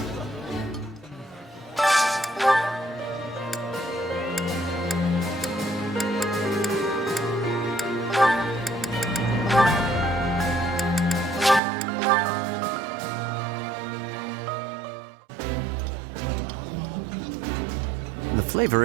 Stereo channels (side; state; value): left; drops out; at 11.6 s